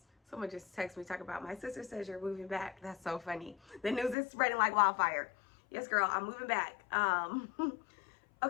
Someone just texted me talking about, my sister says you're moving back. That's so funny. The news is spreading like wildfire. Yes, girl, I'm moving back.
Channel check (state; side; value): drops out; right; at 4.2 s